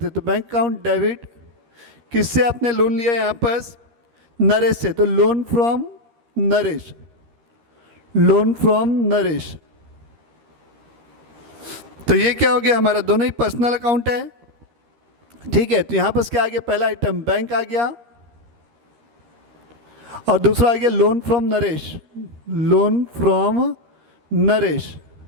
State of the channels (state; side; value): late; left; 13 ms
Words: हैं। तो बैंक अकाउंट डेबिट, किससे आपने लोन लिया यहाँ पर, नरेश से, तो loan from Naresh, loan from Naresh. तो ये क्या हो गया हमारा, दोनों ही पर्सनल अकाउंट है। ठीक है, तो यहाँ पर क्या आ गया, पहला आइटम बैंक आ गया और दूसरा आ गया loan from Naresh, loan from Naresh.